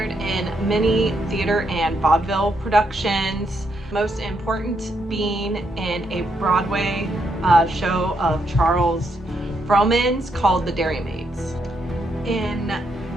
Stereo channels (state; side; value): normal; both; correlation 0.78